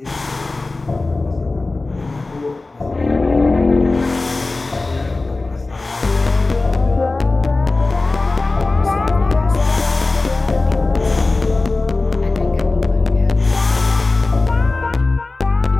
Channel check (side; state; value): right; quieter; 3.3 dB